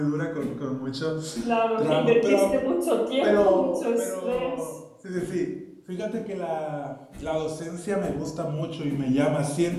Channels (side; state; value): both; identical; correlation 1.00